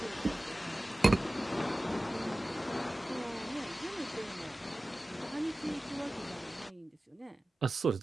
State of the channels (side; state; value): both; normal; correlation 0.96